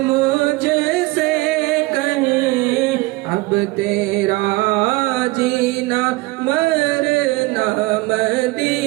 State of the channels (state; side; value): quieter; left; 22.0 dB